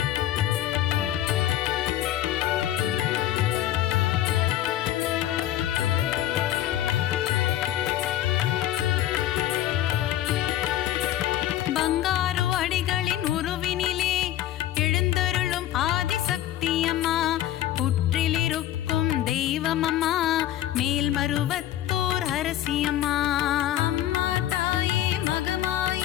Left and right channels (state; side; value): quieter; right; 13.0 dB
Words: பங்காரு அடிகளின் உருவினிலே எழுந்தருளும் ஆதிசக்தி அம்மா புற்றிலிருக்கும் தெய்வமம்மா மேல்மருவத்தூர் அரசியம்மா. அம்மா தாயே